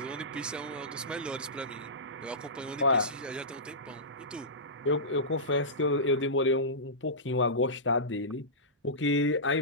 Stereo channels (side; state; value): both; normal; correlation -0.18